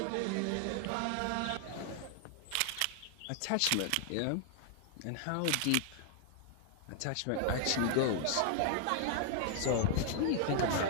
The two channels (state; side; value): different; both; correlation 0.00